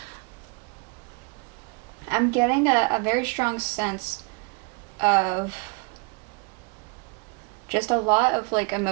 I'm getting a very strong sense of just a lot of, like,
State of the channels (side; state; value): left; quieter; 31.6 dB